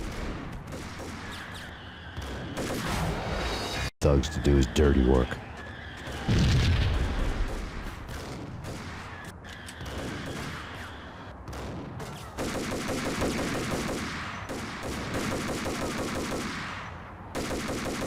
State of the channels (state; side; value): identical; both; correlation 1.00